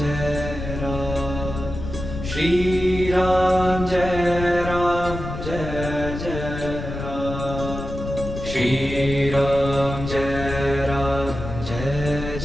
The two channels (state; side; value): noise; left; rumble, 7 dB below the sound